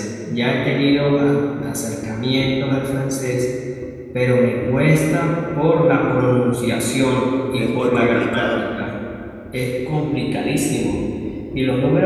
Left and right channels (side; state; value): both; identical; correlation 1.00